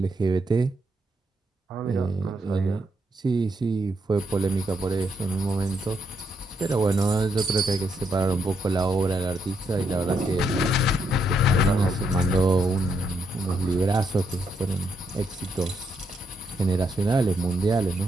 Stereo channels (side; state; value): both; normal; correlation 0.77